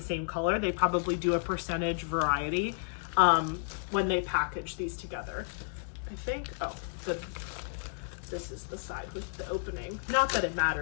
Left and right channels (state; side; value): silent; right; digital silence